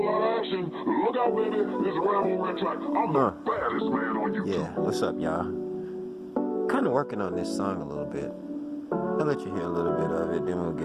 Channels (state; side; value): identical; both; correlation 1.00